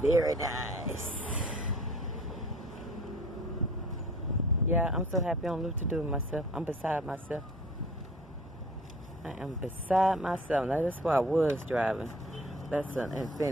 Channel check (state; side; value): normal; both; correlation 0.49